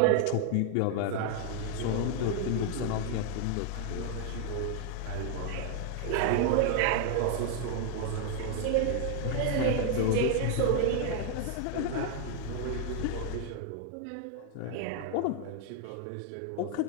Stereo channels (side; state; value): both; different; correlation 0.00